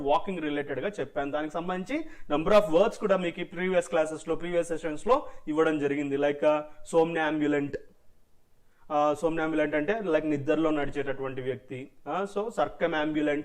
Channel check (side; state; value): both; identical; correlation 1.00